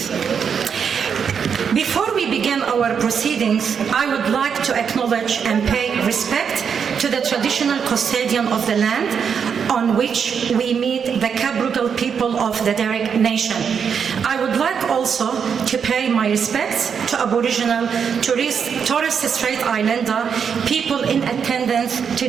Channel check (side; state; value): left; quieter; 6.9 dB